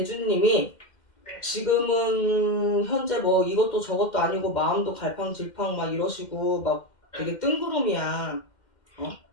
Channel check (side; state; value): right; late; 2.1 ms